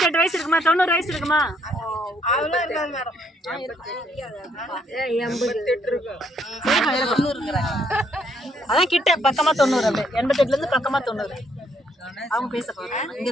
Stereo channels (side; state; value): both; normal; correlation 0.70